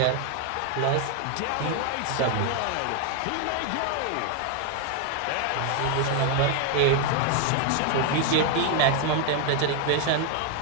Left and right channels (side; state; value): both; different; correlation 0.01